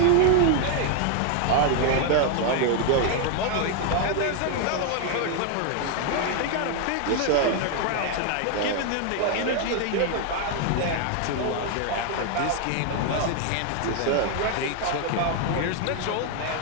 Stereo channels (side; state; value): both; different; correlation 0.00